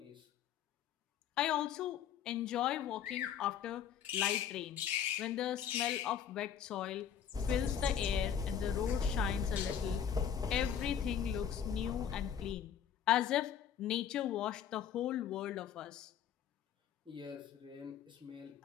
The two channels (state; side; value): quieter; right; 8.7 dB